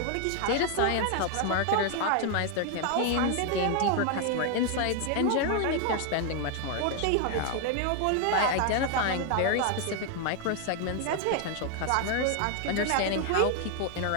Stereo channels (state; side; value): different; both; correlation 0.00